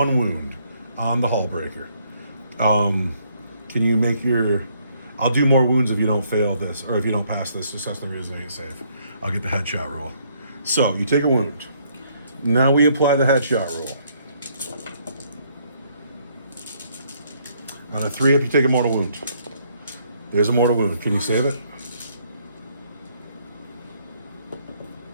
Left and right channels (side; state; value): both; inverted; correlation -0.68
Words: wound on the Hull Breaker. Can you make your... I'll do more wounds if you don't fail this, or if you don't pass this successfully resilient save. I'll get the headshot roll. So, you take a wound. Now we apply the headshot roll. On a 3 up, you take a mortal wound. There's a mortal wound. Can you save it?